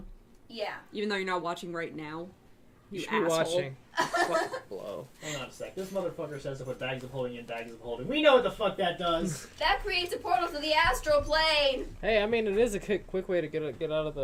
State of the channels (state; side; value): identical; both; correlation 1.00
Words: Yeah. Even though you're not watching right now. You should be asshole. watching. Blow. Hang on a sec. This motherfucker says to put bags of holding in bags of holding. We know what the fuck that does. That creates a portal to the astral plane. Hey, I mean, it is a quick way to get out of the